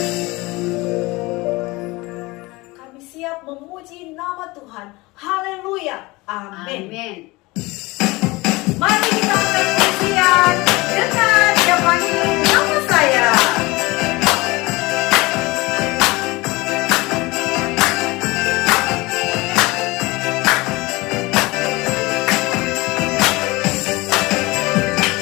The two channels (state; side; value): quieter; right; 22.4 dB